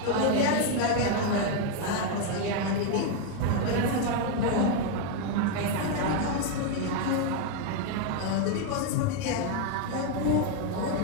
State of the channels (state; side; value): different; both; correlation 0.01